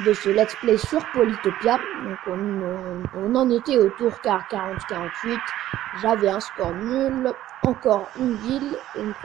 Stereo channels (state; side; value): quieter; left; 13.5 dB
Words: ce let's play sur Polytopia. Donc on en était au tour 40-48, j'avais un score nul, encore une ville et une